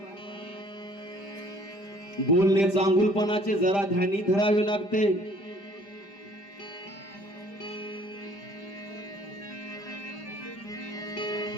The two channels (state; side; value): late; right; 5.0 ms